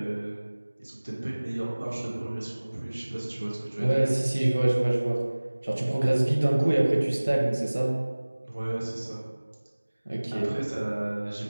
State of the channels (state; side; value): inverted; both; correlation -1.00